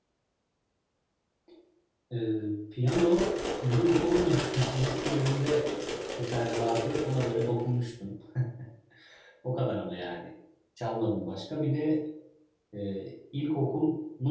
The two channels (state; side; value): identical; both; correlation 1.00